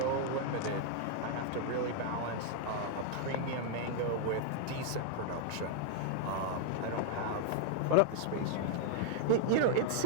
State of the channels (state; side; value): different; both; correlation 0.00